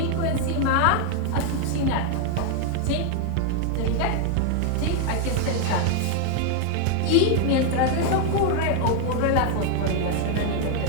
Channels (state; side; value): different; both; correlation 0.00